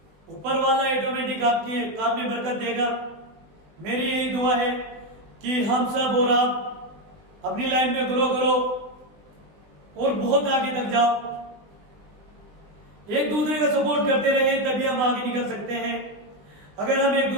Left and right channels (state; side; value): late; left; 20 ms